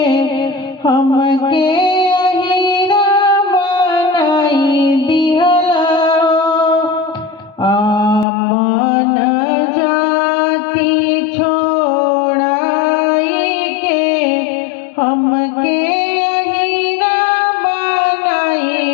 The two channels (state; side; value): drops out; right; at 8.2 s